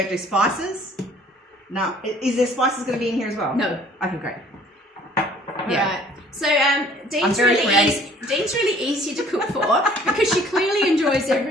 do spices. No. Is there spices going to be in here as well? No. Okay, great. Yeah. Right. So Dene's really easy to cook for because she clearly enjoys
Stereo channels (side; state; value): both; normal; correlation 0.55